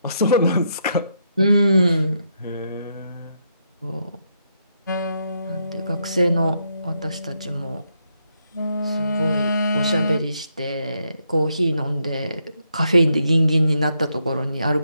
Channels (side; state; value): both; inverted; correlation -0.78